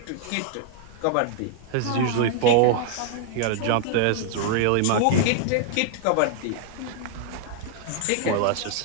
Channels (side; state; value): both; different; correlation 0.00